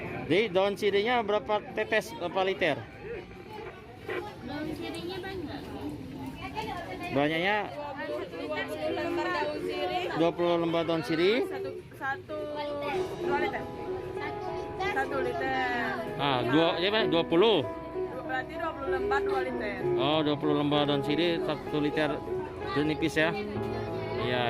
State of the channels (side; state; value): both; identical; correlation 1.00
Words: Jadi daun sirihnya berapa tetes, berapa liter? Daun sirihnya banyak. Banyaknya 20 lembar daun sirih. 2 liter. 1 liter. Ah, 20. Berarti 20 lembar 2 liter. Oh, 20 lembar daun sirih 1 liter jeruk nipis ya.